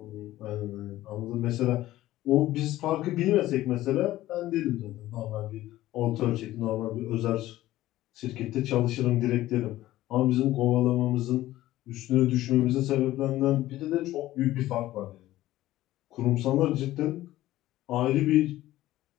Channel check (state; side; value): quieter; right; 15.4 dB